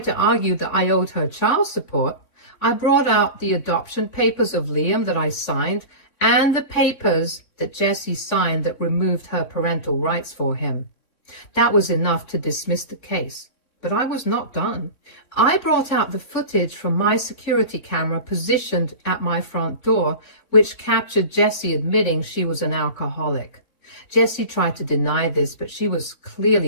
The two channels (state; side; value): late; right; 3.6 ms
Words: to argue that I owed her child support, I brought out the adoption papers of Liam that I signed and the papers that Jessie signed that removed her parental rights for him. That was enough to dismiss the case. But I was not done. I brought out the footage from my security camera positioned at my front door, which captured Jessie admitting she was an alcoholic. Jessie tried to deny this, but she was